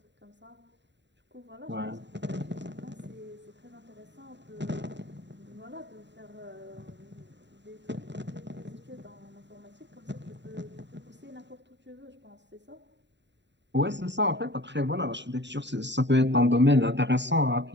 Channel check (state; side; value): late; left; 0.52 ms